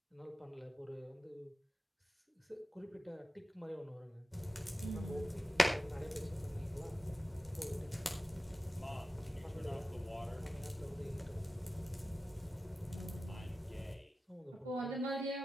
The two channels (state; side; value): normal; both; correlation 0.94